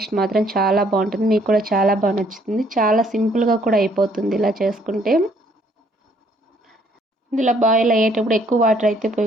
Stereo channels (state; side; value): normal; both; correlation 0.65